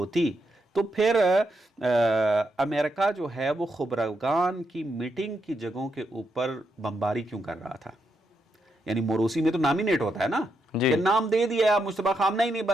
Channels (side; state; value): both; normal; correlation 0.81